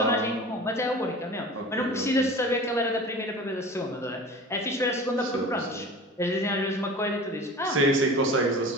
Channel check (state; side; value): normal; both; correlation 0.38